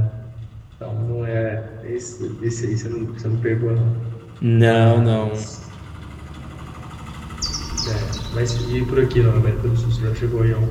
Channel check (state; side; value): identical; both; correlation 1.00